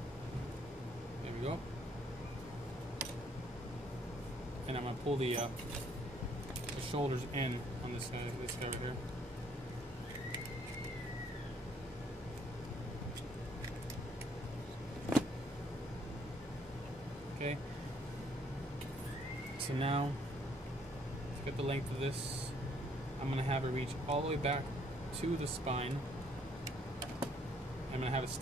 There we go. And I'm going to pull the shoulders in on this guy right here. Okay. So now, let's get the length of this. I'm going to have it reach all the way back to the spine. I'm going to have it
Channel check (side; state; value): both; normal; correlation 0.66